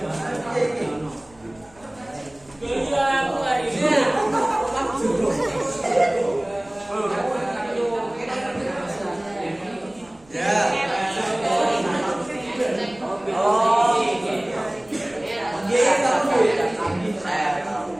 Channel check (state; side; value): noise; right; rumble, 29 dB below the sound